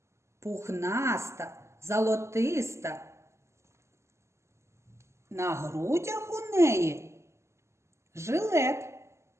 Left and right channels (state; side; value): late; left; 0.13 ms